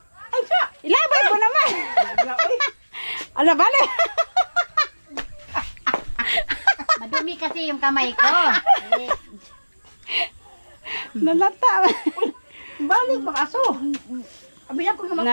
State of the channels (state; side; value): inverted; both; correlation -1.00